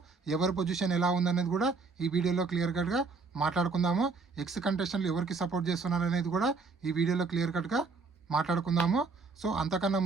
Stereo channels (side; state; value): left; quieter; 4.3 dB